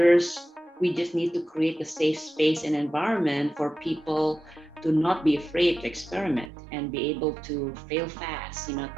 we just need to create a safe space and environment for people to not be afraid to experiment and be able to fail fast,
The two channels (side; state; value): left; drops out; at 6.5 s